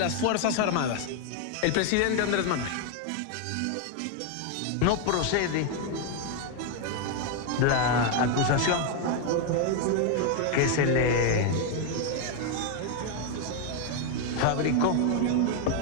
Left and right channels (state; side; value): different; both; correlation 0.01